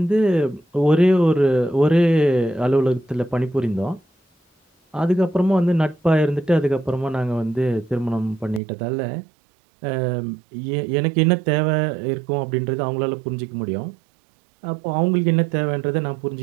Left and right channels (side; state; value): left; drops out; at 8.6 s